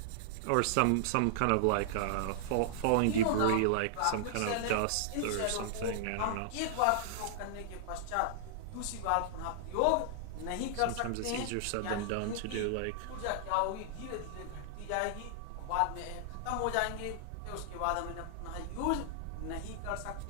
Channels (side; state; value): both; different; correlation -0.01